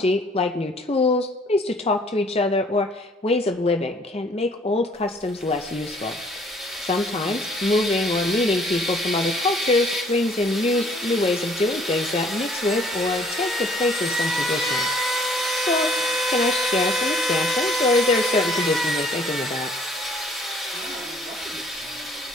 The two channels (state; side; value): normal; both; correlation 0.59